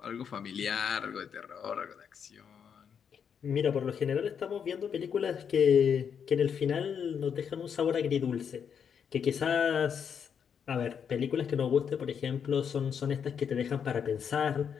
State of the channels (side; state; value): right; quieter; 7.4 dB